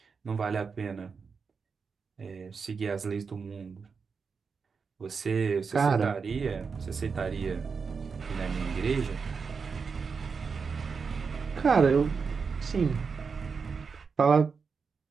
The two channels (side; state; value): left; quieter; 5.4 dB